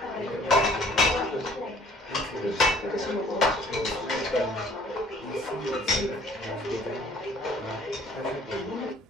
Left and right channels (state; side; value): normal; both; correlation 0.56